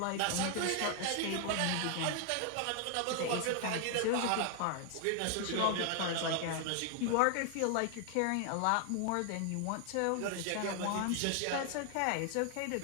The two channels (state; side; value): different; both; correlation 0.00